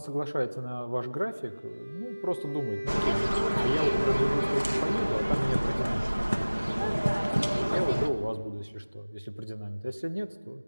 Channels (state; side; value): inverted; both; correlation -1.00